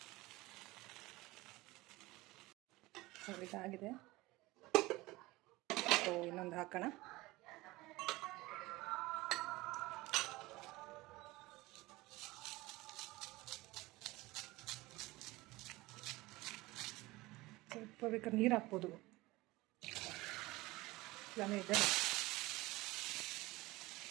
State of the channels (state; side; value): quieter; left; 20.4 dB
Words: ಸೊ ಇದಾಗಿದೆ. ಸೊ ಇನ್ನೊಂದು ಹಾಕೋಣ. ಸ್ವಲ್ಪ ಬೇಕಾದ್ರೆ ನೀರು ಹಾಕ್ಬೋದು, ಇಲ್ಲಾಂದರೆ ಇದೆ.